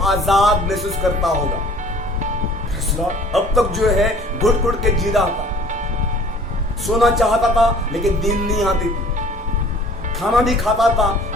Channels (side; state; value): both; normal; correlation 0.51